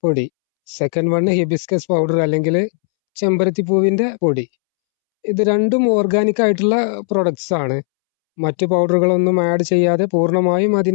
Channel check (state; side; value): silent; right; 69 dB below the other